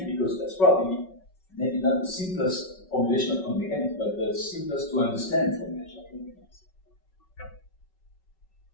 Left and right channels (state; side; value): late; right; 5.3 ms